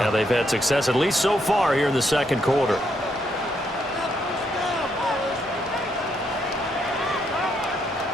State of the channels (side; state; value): both; normal; correlation 0.76